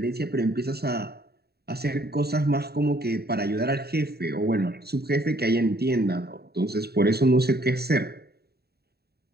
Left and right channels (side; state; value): left; late; 0.46 ms